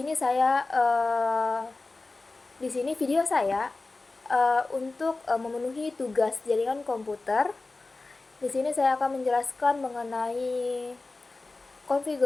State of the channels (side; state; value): right; quieter; 3.4 dB